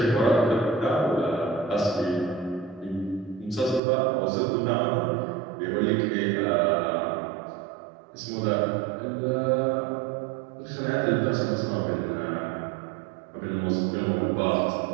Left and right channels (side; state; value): left; drops out; at 3.8 s